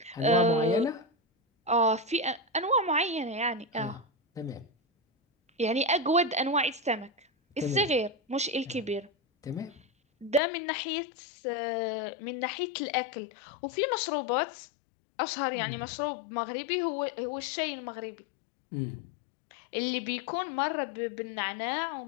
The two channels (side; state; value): right; drops out; at 10.4 s